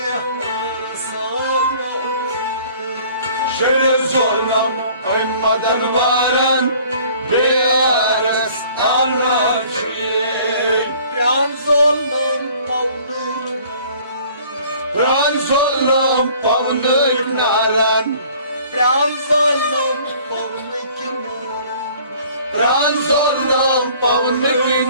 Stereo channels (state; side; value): inverted; both; correlation -0.53